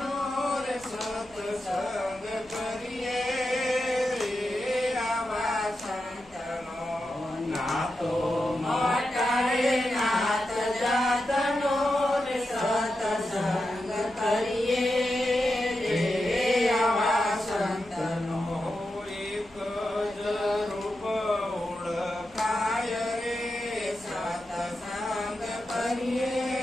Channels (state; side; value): noise; left; hum, 28 dB below the sound